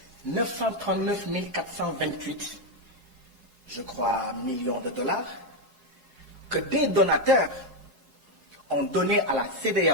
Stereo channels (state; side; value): late; right; 4.8 ms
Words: 939 428, je crois, millions de dollars, que des donateurs ont donné à la